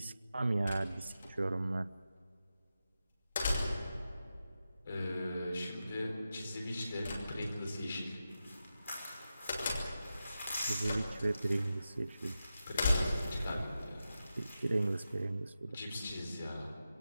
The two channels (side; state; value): both; inverted; correlation -0.90